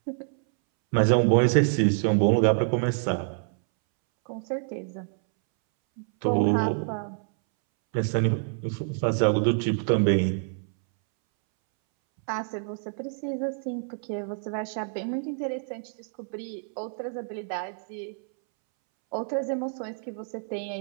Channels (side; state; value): left; silent; 60 dB below the other